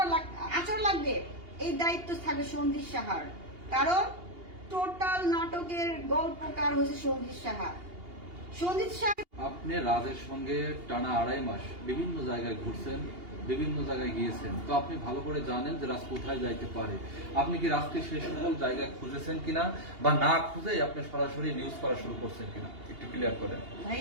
আচর লাগবে, এই দায়িত্ব থাকবে সন্দীপ সাহার। কারণ টোটাল নাটকের গল্পকার হয়েছে সন্দীপ সাহা। সন্দীপ সাহা আপনি রাজের সঙ্গে টানা 2.5 মাস বিভিন্ন জায়গায় ঘুরছেন, বিভিন্ন জায়গায় গিয়েছেন, তো আপনি ভালো করে জানেন যে রাজ কোথায় যাইতে পারে। আপনি কি রাজকে সেই সকল জায়গায় খুঁজেছেন কিনা, বা না খুঁজে আপনি সরাসরি নিউজ করা শুরু করছেন কিনা, একটু ক্লিয়ার করেন।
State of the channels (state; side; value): late; left; 2.8 ms